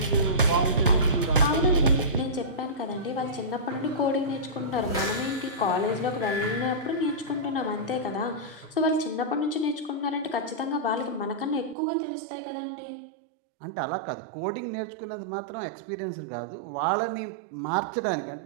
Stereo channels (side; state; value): left; drops out; at 11.8 s